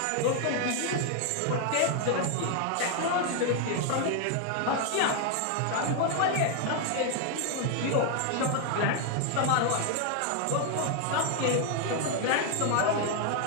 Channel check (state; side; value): different; both; correlation 0.00